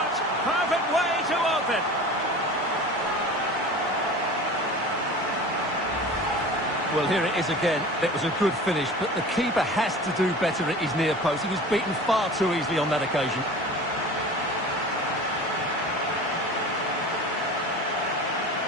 Perfect way to open. Well, here it is again. It was a good finish, but the keeper has to do better at his near post. He was beaten far too easily on that occasion.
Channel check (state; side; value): normal; both; correlation 0.37